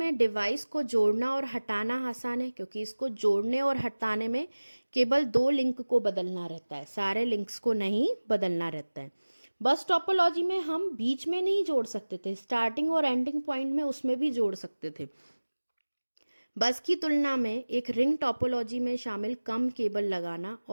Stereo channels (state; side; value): inverted; both; correlation -1.00